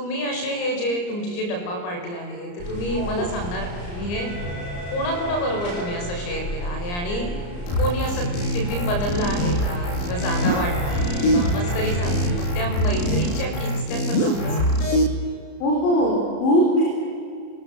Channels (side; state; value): right; late; 34 ms